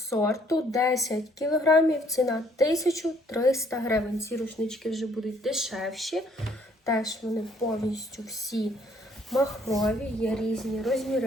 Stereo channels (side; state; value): both; normal; correlation 0.64